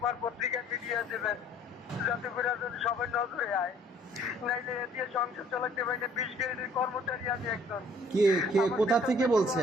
পত্রিকায় মিডিয়া দেবেন, যাতে করে সবাই নজরে আয়। নাইলে দিয়ে সংসার চালাতে পারি না। 20 গ্রেডের কর্মচারী আমি একজন। কোথা থেকে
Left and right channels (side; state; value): both; normal; correlation 0.58